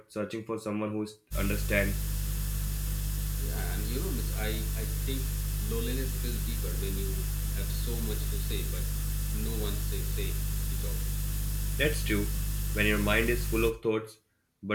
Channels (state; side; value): identical; both; correlation 1.00